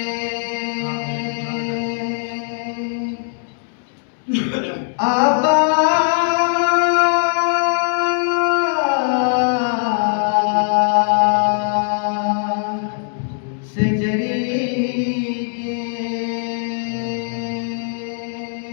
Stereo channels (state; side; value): silent; right; 66 dB below the other